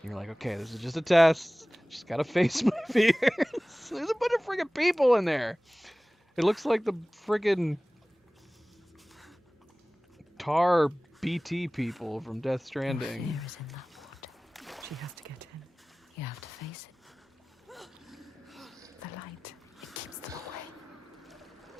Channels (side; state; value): both; normal; correlation 0.98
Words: you're like, okay, this is just a test. Just gotta face my fears. There's a bunch of friggin' people in there. It looks like the friggin' tar BT people from Death Stranding. Fear is in that water. She has to get in. You have to face it. The light. It keeps them away.